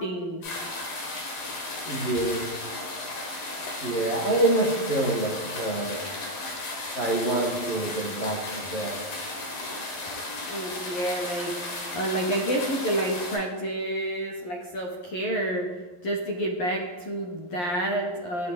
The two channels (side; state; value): right; late; 12 ms